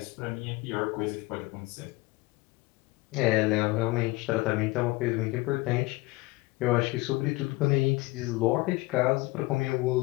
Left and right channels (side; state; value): right; quieter; 21.9 dB